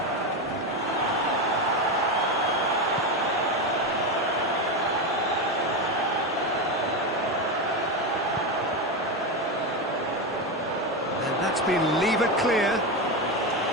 And that's been levered clear.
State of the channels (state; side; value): normal; both; correlation 0.14